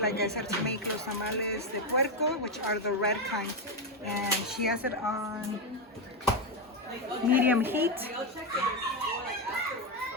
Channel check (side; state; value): both; normal; correlation 0.07